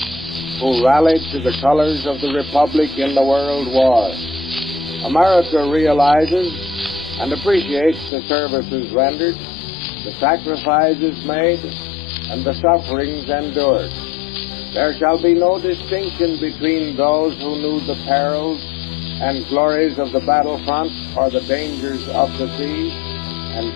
who rallied to the colors of the Republic in the World War. America realizes and appreciates the services rendered, the sacrifices made, and the sufferings endured. There shall be no distinction between those who knew the perils and glories of the battlefront or the dangers of the sea, and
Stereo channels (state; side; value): drops out; right; at 8.1 s